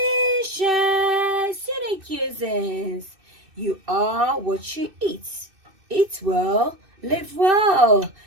unique cuisines. You are what you eat. Eat well, live well.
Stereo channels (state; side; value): late; left; 2.6 ms